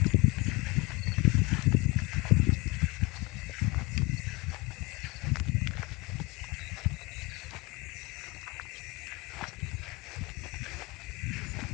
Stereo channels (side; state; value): right; quieter; 25.3 dB